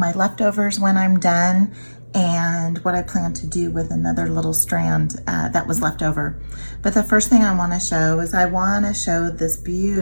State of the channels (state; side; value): inverted; both; correlation -1.00